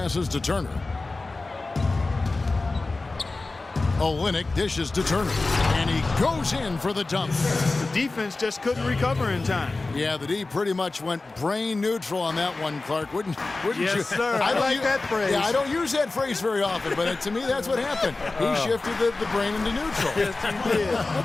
to Turner. Olynyk dishes to Turner. And he goes in for the dunk. The defense just couldn't recover in time. Yeah, the D pretty much went brain neutral on that one, Clark. Wouldn't you? Yes, sir. I like that phrase. Yeah, I don't use that phrase very often, but to me, that's what happened. He shifted the brain into neutral. Yes, he did.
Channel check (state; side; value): quieter; right; 3.4 dB